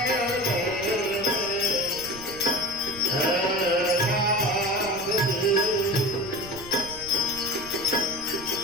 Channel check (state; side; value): noise; right; rumble, 17 dB below the sound